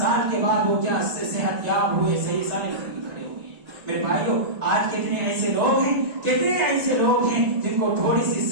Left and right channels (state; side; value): late; left; 1.9 ms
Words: کے بعد وہ کیا صحت یاب ہوئے, صحیح سارے کھڑے ہو گئے. میرے بھائیوں, آج کتنے ایسے لوگ ہیں, کتنے ایسے لوگ ہیں جن کو تھوڑی سی